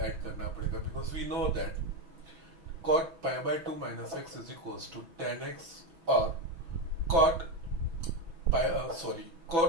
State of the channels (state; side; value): late; left; 6.0 ms